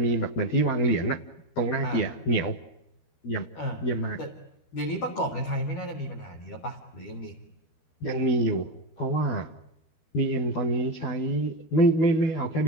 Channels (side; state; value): right; late; 13 ms